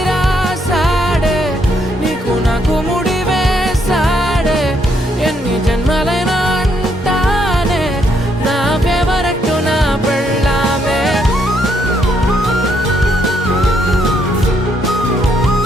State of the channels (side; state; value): both; normal; correlation 0.73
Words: రాసాడే నీకు నాకు ముడి వేసాడే ఎన్ని జన్మలైనా అంటానే నా ఫేవరెట్ నా పెళ్ళామే